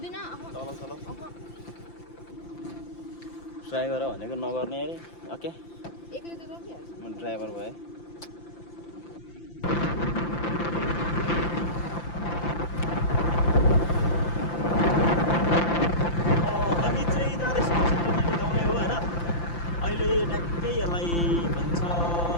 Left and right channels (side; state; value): right; late; 5.8 ms